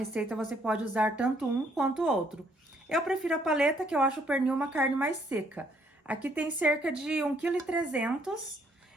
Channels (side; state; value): both; normal; correlation 0.67